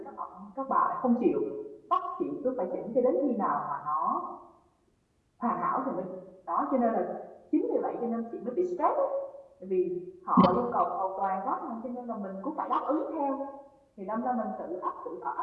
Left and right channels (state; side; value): identical; both; correlation 1.00